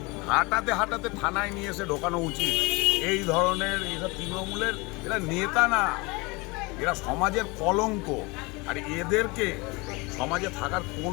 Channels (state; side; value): quieter; right; 26.0 dB